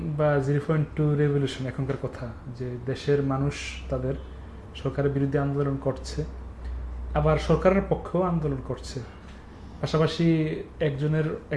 বা 0.2 রেভলিউশন এখনকার কথা, যে দেশের মানুষ তাদের সরকারের বিরুদ্ধে আন্দোলন করছে, আবার সরকারের পক্ষেও আন্দোলন করছে। পাশাপাশি এক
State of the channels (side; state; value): both; identical; correlation 1.00